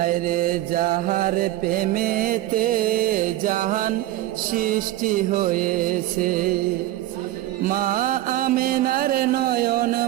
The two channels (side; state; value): left; quieter; 15.2 dB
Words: যাহার প্রেমেতে জাহান সৃষ্টি হয়েছে। মা আমেনার নয়ন